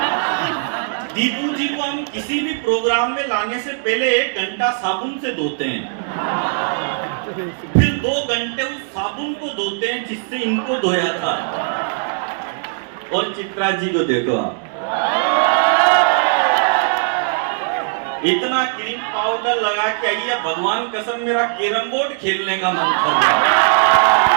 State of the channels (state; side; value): silent; left; digital silence